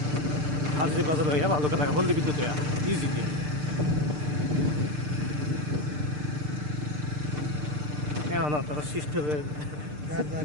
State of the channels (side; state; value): left; late; 6.7 ms